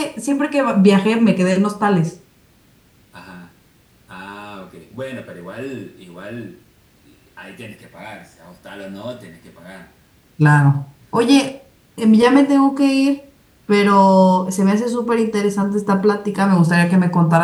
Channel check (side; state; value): both; identical; correlation 1.00